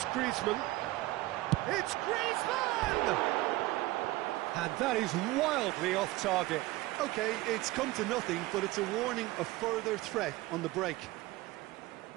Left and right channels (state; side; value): quieter; left; 18.8 dB